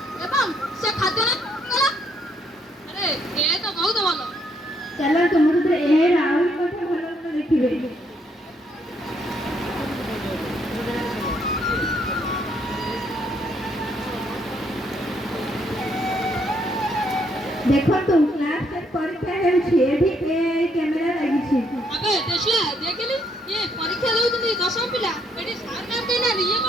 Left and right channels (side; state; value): both; normal; correlation 0.71